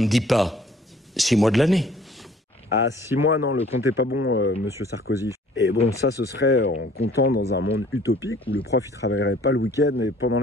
dit pas, 6 mois de l'année. À 6 mois, non, le compte est pas bon, Monsieur Sarkozy. Et bon, ça, ce serait en comptant dans un monde utopique où le prof, il travaillerait pas le week-end et pendant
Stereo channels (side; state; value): both; normal; correlation 0.55